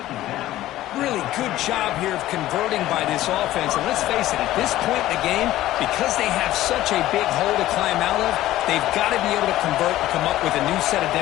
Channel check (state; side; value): quieter; right; 14.9 dB